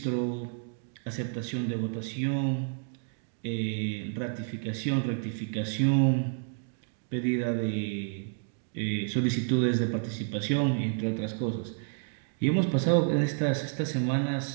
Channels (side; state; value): left; silent; 58 dB below the other